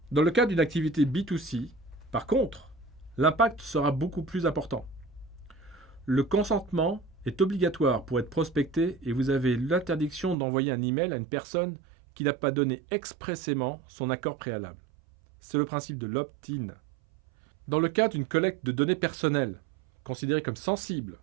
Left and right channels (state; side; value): drops out; left; at 10.4 s